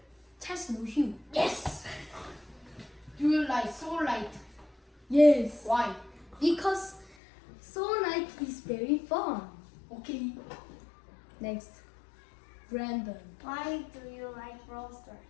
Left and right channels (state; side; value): drops out; right; at 7.2 s